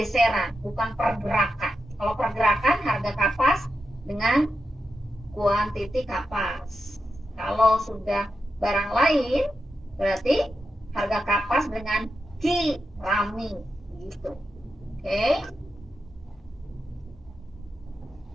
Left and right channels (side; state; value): both; normal; correlation 0.88